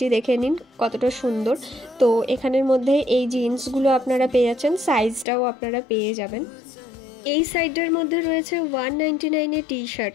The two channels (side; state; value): right; drops out; at 5.2 s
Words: দেখে নিন কতটা সুন্দর। তো এখানের মধ্যে এই জিন্সগুলো আপনারা পেয়ে যাচ্ছেন, সাইজটাও আপনারা পেয়ে যাবেন। এই সাইডটার মধ্যে রয়েছে 199 টি শার্ট,